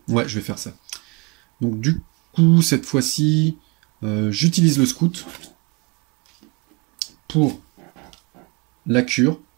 Ouais, je vais faire ça. Donc du coup, cette fois-ci, j'utilise le scout pour la cure,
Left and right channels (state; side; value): quieter; left; 28.7 dB